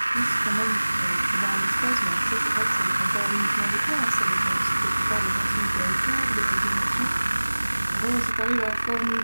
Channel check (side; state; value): both; inverted; correlation -1.00